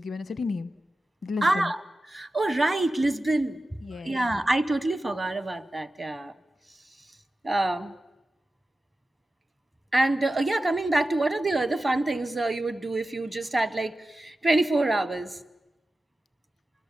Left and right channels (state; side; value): normal; both; correlation 0.94